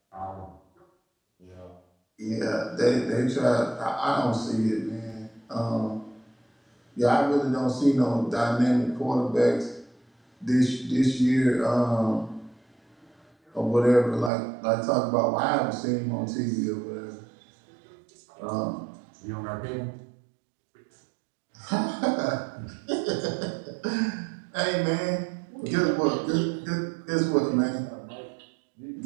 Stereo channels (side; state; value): left; drops out; at 14.3 s